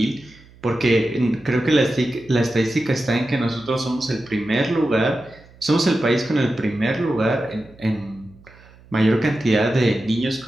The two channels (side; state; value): right; noise; hum, 25 dB below the sound